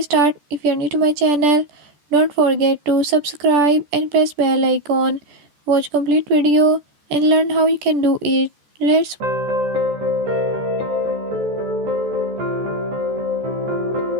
start, if you are new to my channel, don't forget to subscribe and press bell icon. Watch complete video and learn how you can do it. Let's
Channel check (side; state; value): left; late; 14 ms